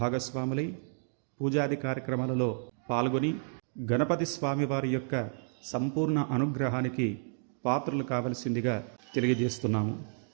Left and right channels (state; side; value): silent; left; 57 dB below the other